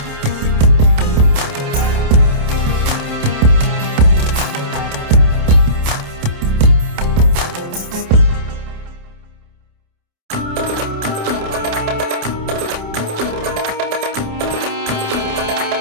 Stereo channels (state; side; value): late; left; 28 ms